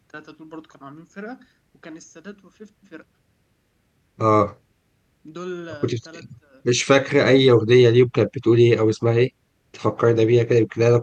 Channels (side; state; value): both; identical; correlation 1.00